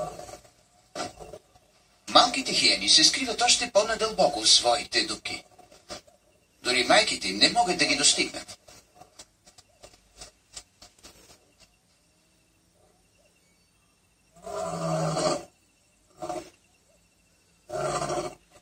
Малките хиени се скриват още по-надълбоко в своите дупки. Дори майките им не могат да ги достигнат.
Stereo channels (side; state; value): both; identical; correlation 1.00